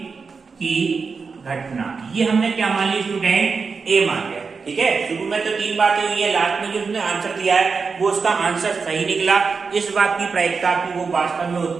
की घटना, ये हमने क्या मान ली स्टूडेंट ए मान लिया, ठीक है। शुरू में तो 3 बातें हुई है, लास्ट में जो उसने आंसर दिया है वो उसका आंसर सही निकला। इस बात की प्रायिकता की वो वास्तव में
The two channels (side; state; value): left; quieter; 5.0 dB